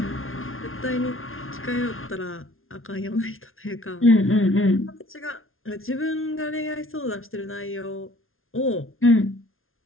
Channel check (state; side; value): late; right; 0.61 ms